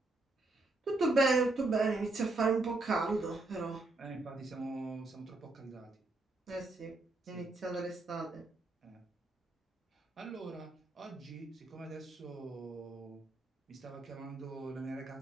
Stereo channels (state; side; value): quieter; left; 3.0 dB